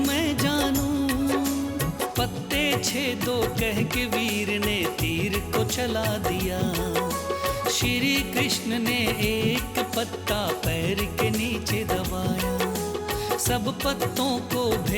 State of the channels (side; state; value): both; identical; correlation 1.00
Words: जानूं। पत्ते छेदो कह के वीर ने तीर को चला दिया। श्री कृष्ण ने एक पत्ता पैर के नीचे दबाया। सब पत्तों को